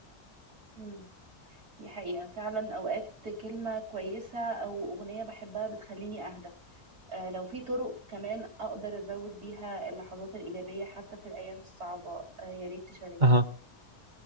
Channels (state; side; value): late; left; 2.1 ms